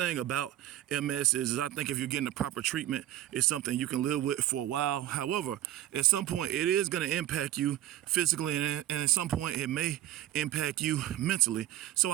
about MS is I think if you're getting the proper treatment, it's something you can live with for a while. However, at some point it is going to impact you physically, and at some point it may impact you mentally. So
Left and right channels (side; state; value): left; quieter; 13.1 dB